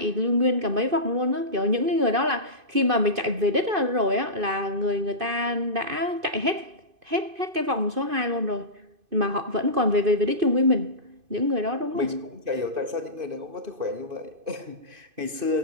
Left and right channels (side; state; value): left; late; 2.5 ms